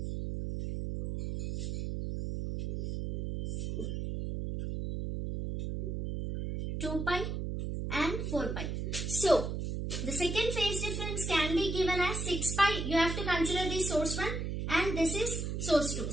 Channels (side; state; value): right; noise; hum, 3 dB below the sound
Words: 2 pi and 4 pi. So the second phase difference can be given as 6 pi. You have to consider this source 1 and this is source 2.